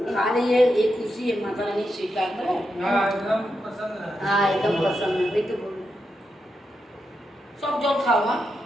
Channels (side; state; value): both; normal; correlation 0.85